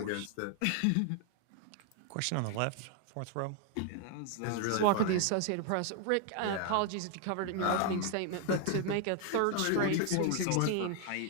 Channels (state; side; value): different; both; correlation 0.00